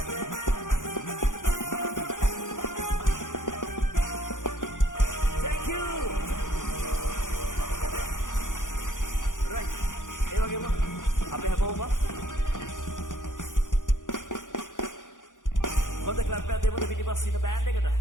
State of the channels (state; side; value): late; right; 0.87 ms